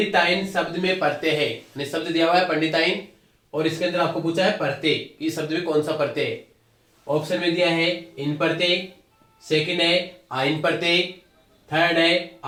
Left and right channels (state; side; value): identical; both; correlation 1.00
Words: शब्द में प्रत्यय है, यानी शब्द दिया हुआ है पंडिताइन और इसके अंदर आपको पूछा है प्रत्यय, इस शब्द में कौन सा प्रत्यय है। ऑप्शन में दिया है इन प्रत्यय, सेकंड है आइन प्रत्यय, थर्ड है